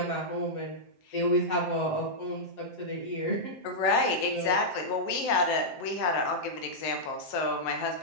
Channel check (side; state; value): right; late; 7.7 ms